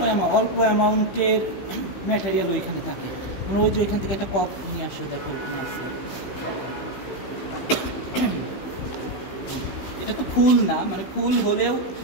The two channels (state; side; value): late; right; 15 ms